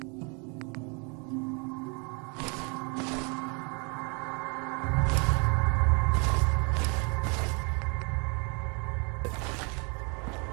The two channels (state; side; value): quieter; left; 34.5 dB